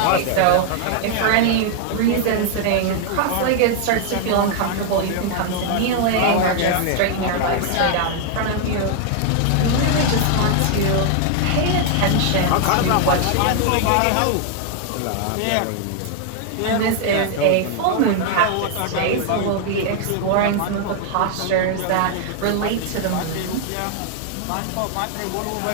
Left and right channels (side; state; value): both; different; correlation 0.00